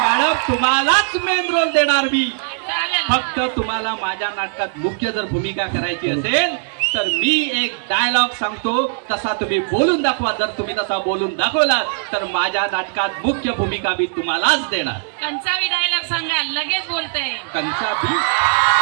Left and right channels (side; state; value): left; silent; digital silence